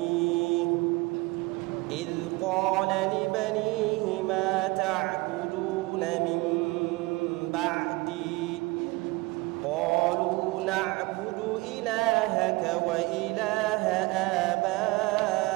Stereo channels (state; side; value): quieter; left; 23.4 dB